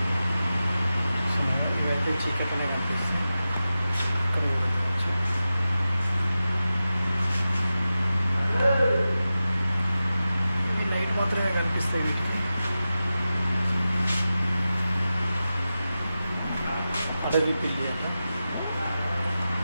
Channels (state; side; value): inverted; both; correlation -0.93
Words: ఇవైతే చీకట్లోనే కనిపిస్తుంది. లైట్ మాత్రమే కనిపిస్తాయి వీటికి. అడవి పిల్లి అంట.